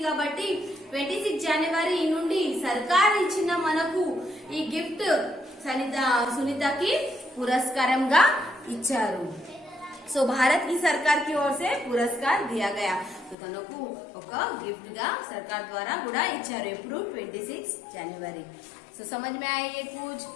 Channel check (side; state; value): right; drops out; at 13.4 s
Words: కాబట్టి 26 జనవరి నుండి సర్కార్ ఇచ్చిన మనకు ఈ గిఫ్ట్ సునీతకి పురస్కారంగా ఇచ్చారు. సో భారత్ की सरकार की ओर से पुरस्कार दिया गया. तो తనకు ఒక గిఫ్ట్ గా సర్కార్ ద్వారా కూడా ఇచ్చారు. ఎప్పుడు 26 जनवरी. సో समझ में आया ये कुछ.